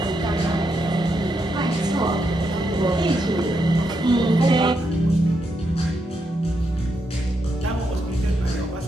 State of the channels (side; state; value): both; normal; correlation 0.81